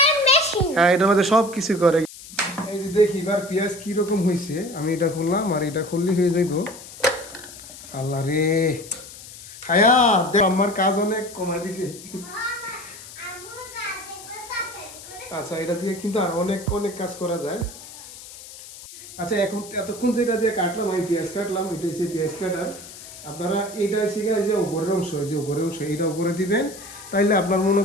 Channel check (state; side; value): noise; left; hiss, 16 dB below the sound